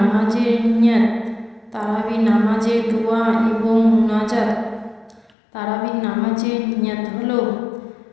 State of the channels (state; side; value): drops out; right; at 5.3 s